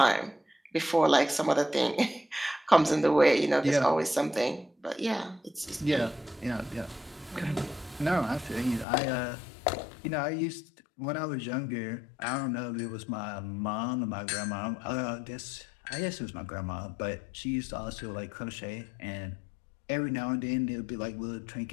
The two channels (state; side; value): drops out; right; at 8.8 s